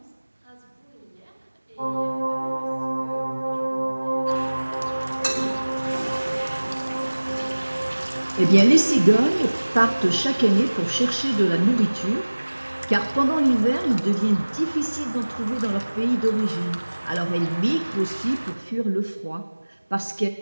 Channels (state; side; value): inverted; both; correlation -1.00